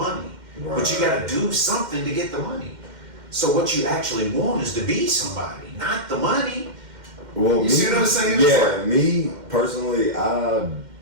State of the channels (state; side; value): late; left; 2.1 ms